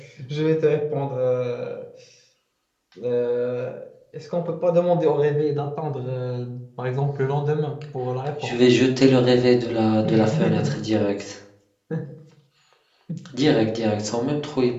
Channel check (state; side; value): identical; both; correlation 1.00